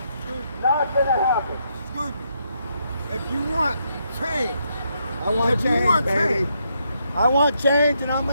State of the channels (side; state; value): both; inverted; correlation -0.77